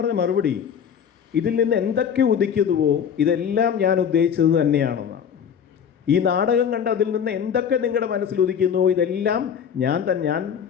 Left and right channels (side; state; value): right; quieter; 7.9 dB